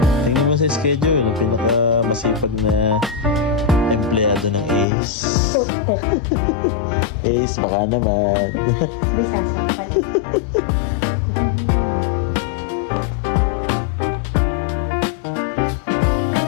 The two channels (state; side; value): drops out; right; at 4.9 s